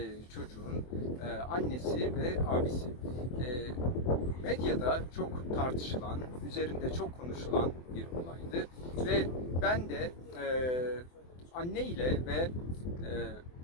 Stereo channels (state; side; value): late; right; 24 ms